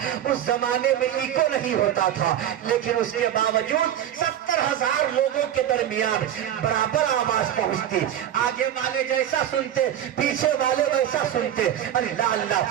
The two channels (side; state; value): left; quieter; 10.8 dB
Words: اس زمانے میں ایکو نہیں ہوتا تھا, لیکن اس کے باوجود 70,000 لوگوں کے درمیان برابر آواز پہنچتی. آگے والے جیسا سنتے پیچھے والے ویسا سنتے. اللہ